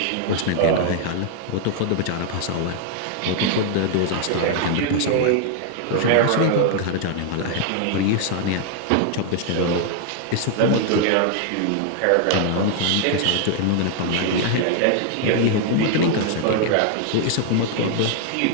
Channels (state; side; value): different; both; correlation 0.00